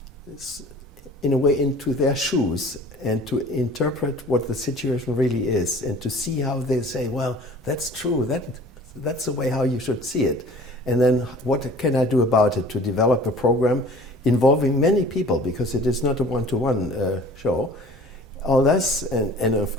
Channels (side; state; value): both; normal; correlation 0.46